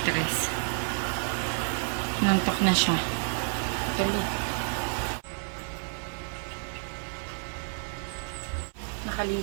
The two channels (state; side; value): silent; left; 55 dB below the other